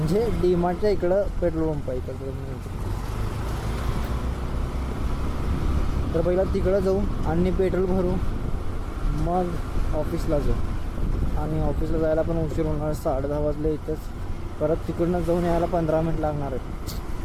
डीमार्टच्या इकडं पेट्रोल पंप आहे इकडं. तर पहिला तिकडं जाऊ आणि पेट्रोल भरू, मग ऑफिसला जाऊ. आणि ऑफिसला जायला पण उशीर होणार, 10:30 वाजले इथंच. परत तिकडनं जाऊन यायला 15 मिनिट लागणार आहेत.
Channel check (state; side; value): identical; both; correlation 1.00